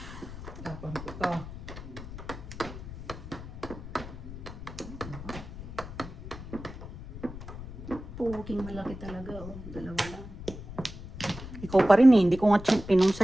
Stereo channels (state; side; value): noise; left; rumble, 12 dB below the sound